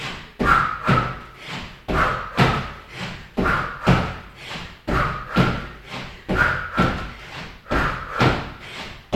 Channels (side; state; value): both; identical; correlation 1.00